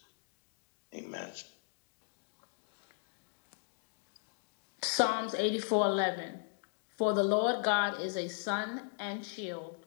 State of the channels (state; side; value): silent; right; digital silence